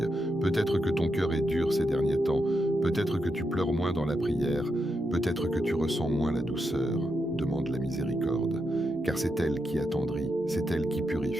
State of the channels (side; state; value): both; normal; correlation 0.84